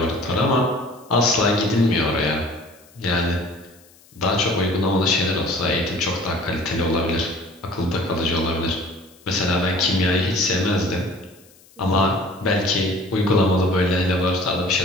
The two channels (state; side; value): noise; left; hiss, 28 dB below the sound